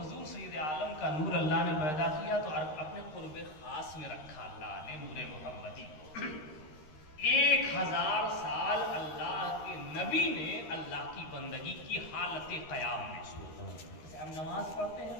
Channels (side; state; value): right; late; 13 ms